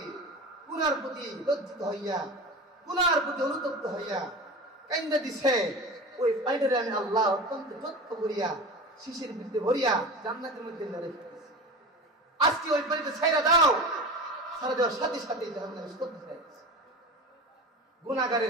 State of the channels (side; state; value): both; normal; correlation 0.30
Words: গুনার প্রতি লজ্জিত হইয়া, গুনার প্রতি অনুতপ্ত হইয়া কাইন্দা দিছে, ওই পানিটারে আমি আল্লাহ অত্যন্ত যত্ন করিয়া শিশির ভিতরে ভরিয়া জান্নাতের মধ্যে রেখে দিয়েছি। আজকে ওই পানিটা ছাইরা দাও, ছাড়া দেওয়ার সাথে সাথে জাহান্নামে স্তব্ধ হয়ে গেছে।